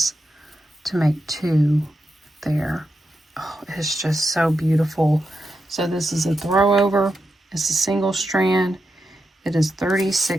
to make 2 there. Oh, it's just so beautiful. So this is a throw over. It's a single strand. It is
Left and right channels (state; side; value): normal; both; correlation 0.87